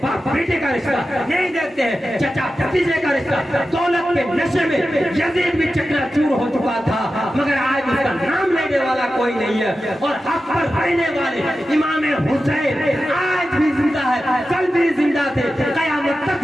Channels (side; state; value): both; normal; correlation 0.92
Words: باپ بیٹے کا رشتہ, نہیں دیکھتے ہیں چچا بھتیجے کا رشتہ. دولت کے نشے میں یزید بھی چکنا چور ہو چکا تھا مگر آج اس کا نام لینے والا کوئی نہیں ہے. اور حق پر رہنے والے امام حسین آج بھی زندہ ہے, کل بھی زندہ تھے, قیامت